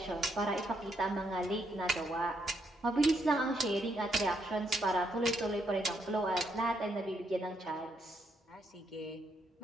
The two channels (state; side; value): normal; both; correlation 0.76